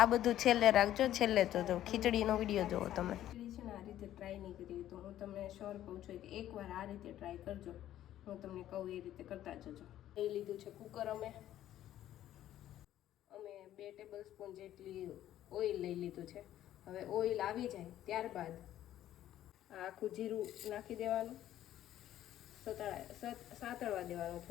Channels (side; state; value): right; quieter; 12.5 dB